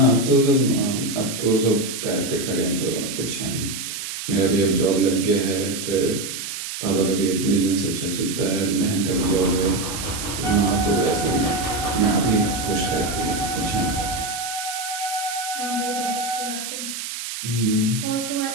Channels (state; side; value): noise; right; hiss, 7 dB below the sound